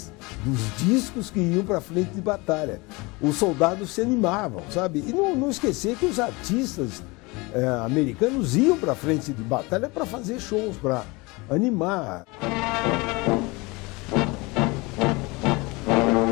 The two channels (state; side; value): quieter; right; 25.2 dB